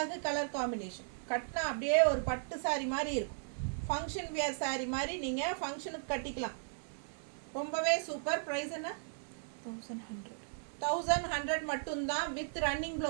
கலர் காம்பினேஷன். கட்டினா அப்படியே ஒரு பட்டு சாரி மாதிரி இருக்கும். ஃபங்க்ஷன் வியர் சாரி மாதிரி நீங்கள் ஃபங்க்ஷனுக்கு கட்டிக்கலாம். ரொம்பவே சூப்பர். ப்ரைஸ் என்ன? 1100 மட்டும்தான். வித் ரன்னிங்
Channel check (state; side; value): silent; left; 54 dB below the other